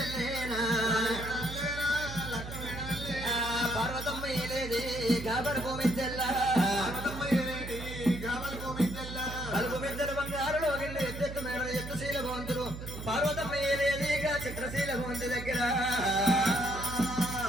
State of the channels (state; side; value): noise; right; hum, 9 dB below the sound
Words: పార్వతమ్మ ఏలేది గాబర్ గోమిద్దెల్ల కలుపు మిద్దెల బంగారులో గిళ్ళు ఎత్తెత్తు మేడ ఎత్తుశీల భవంతులు పార్వతమ్మ ఏలేదిగా చిత్రశీల భవంతి దగ్గర